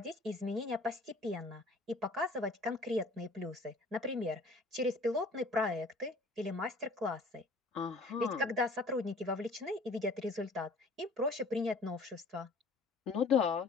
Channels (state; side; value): quieter; right; 3.1 dB